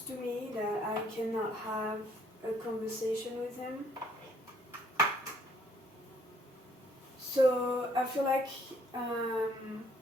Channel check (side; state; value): both; normal; correlation 0.64